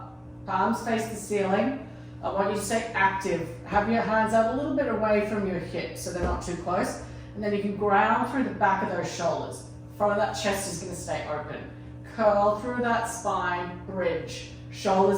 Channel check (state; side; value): identical; both; correlation 1.00